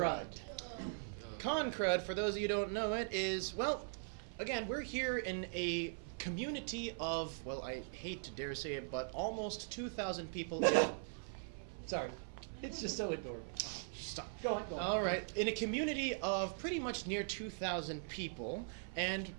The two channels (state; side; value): silent; left; 51 dB below the other